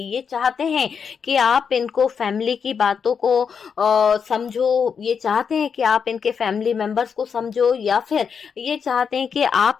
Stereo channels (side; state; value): right; quieter; 6.5 dB